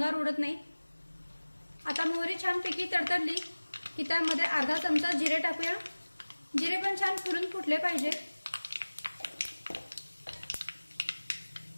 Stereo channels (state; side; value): inverted; both; correlation -1.00